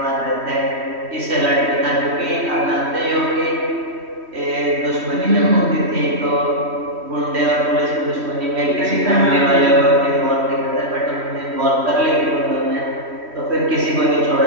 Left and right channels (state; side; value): late; left; 3.1 ms